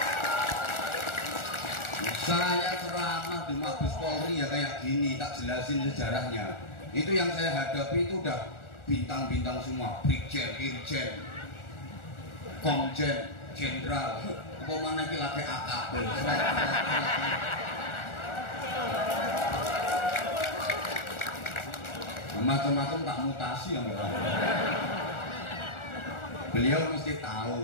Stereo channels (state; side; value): late; right; 1.4 ms